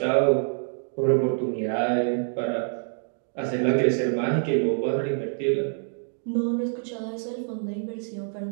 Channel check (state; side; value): silent; left; digital silence